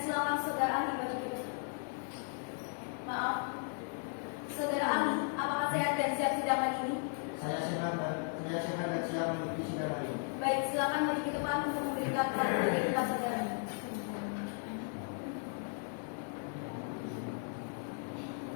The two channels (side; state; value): right; silent; 54 dB below the other